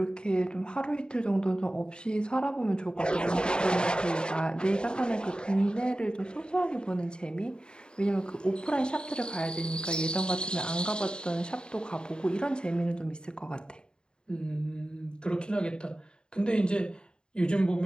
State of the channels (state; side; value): late; right; 0.049 ms